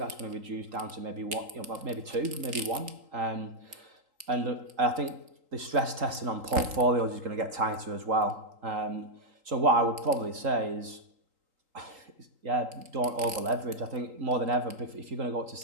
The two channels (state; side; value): late; left; 3.8 ms